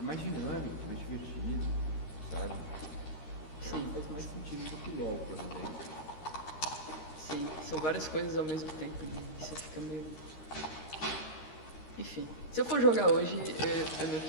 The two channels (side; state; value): right; late; 13 ms